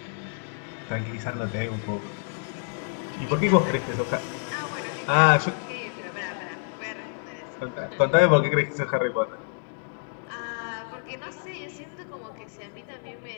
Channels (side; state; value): right; silent; 60 dB below the other